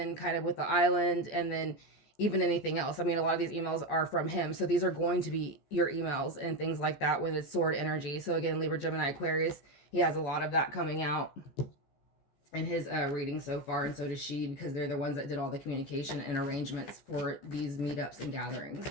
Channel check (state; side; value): late; right; 14 ms